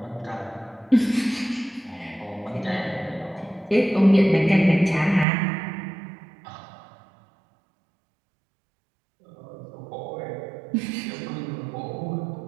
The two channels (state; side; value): drops out; left; at 5.2 s